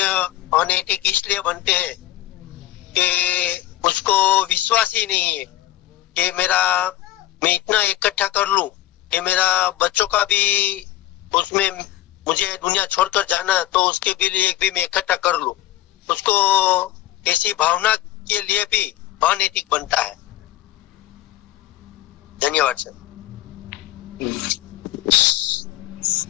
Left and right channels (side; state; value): right; quieter; 14.1 dB